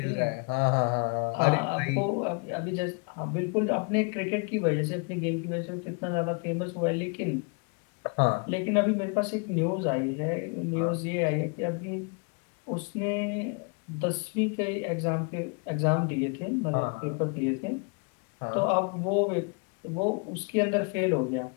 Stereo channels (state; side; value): quieter; right; 34.7 dB